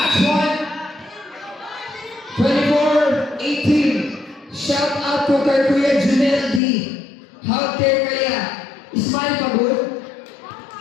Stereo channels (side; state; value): right; drops out; at 6.6 s